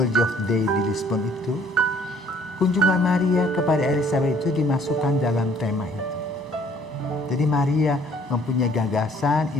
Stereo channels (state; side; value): normal; both; correlation 0.59